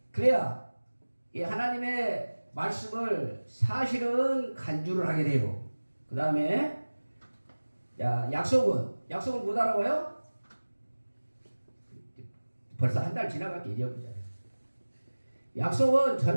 그래야 이 하나님의 말씀을 사실은 간주를 하게 돼요. 그 다음에 약속은 못 알아봐요? 벌써 한 달 지나갔기 잊어버렸잖아요. 약속은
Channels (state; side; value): inverted; both; correlation -1.00